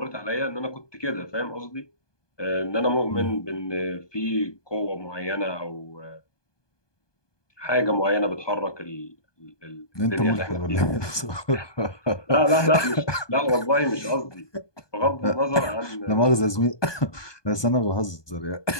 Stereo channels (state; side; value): late; right; 1.2 ms